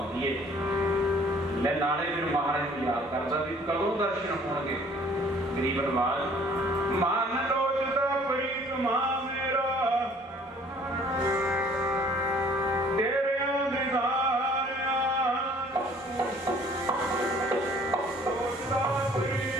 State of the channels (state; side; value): normal; both; correlation 0.55